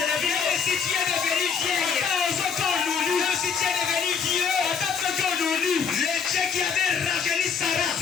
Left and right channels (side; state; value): right; quieter; 6.3 dB